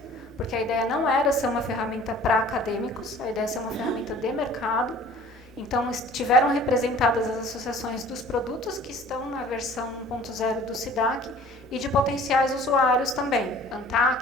porque a ideia não era ser uma ferramenta para acadêmicos, a ideia é ser uma ferramenta de mercado. Então, estiveram representadas as associações dos produtos que estão na versão 1.0 do SIDAC e de potenciais usuários também,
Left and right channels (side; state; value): both; normal; correlation 0.49